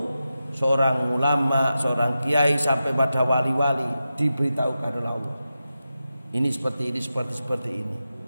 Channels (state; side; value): inverted; both; correlation -0.91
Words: seorang ulama, seorang kiai sampai pada wali-wali diberitahukan oleh Allah, ini seperti ini, seperti ini,